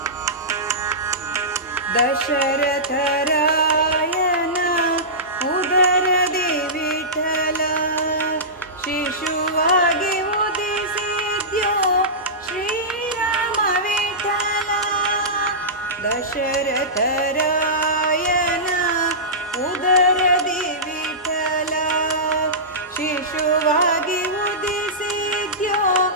ದಶರಥ ರಾಯನ ಉದರದಿ ವಿಠಲ ಶಿಶುವಾಗಿ ಉದಿಸಿದ್ಯೋ ಶ್ರೀರಾಮ ವಿಠಲ ದಶರಥ ರಾಯನ ಉದರದಿ ವಿಠಲ ಶಿಶುವಾಗಿ ಉದಿಸಿದ್ಯೋ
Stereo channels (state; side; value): normal; both; correlation -0.17